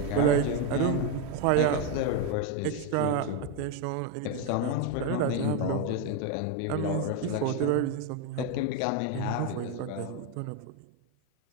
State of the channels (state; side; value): different; both; correlation 0.02